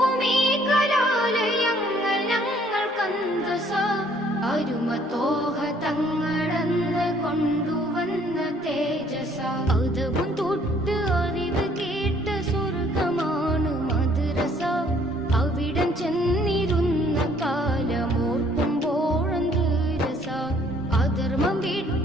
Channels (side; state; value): both; normal; correlation 0.61